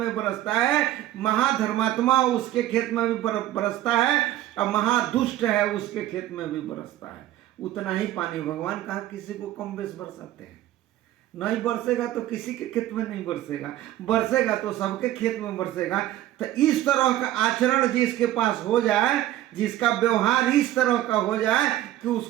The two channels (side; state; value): left; quieter; 13.9 dB